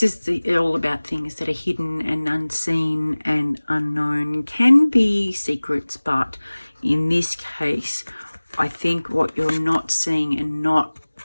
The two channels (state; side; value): inverted; both; correlation -1.00